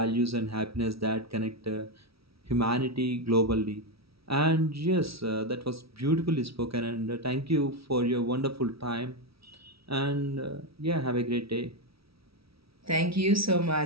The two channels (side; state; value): left; late; 0.76 ms